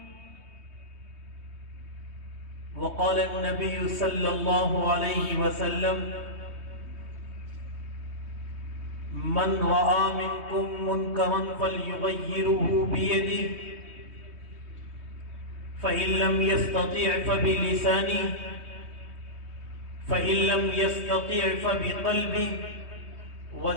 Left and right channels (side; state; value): left; late; 3.2 ms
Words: وقال النبي صلى الله عليه وسلم: من رأى منكم منكرا فليغيره بيده فإن لم يستطع فبلسانه فإن لم يستطع فبقلبه